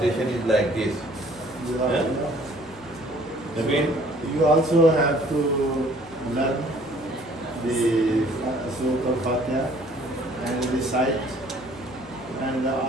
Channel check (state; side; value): noise; left; hum, 23 dB below the sound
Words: is like this. Huh? Naveen? You also have to learn the Surah Al-Fatiha and recite, and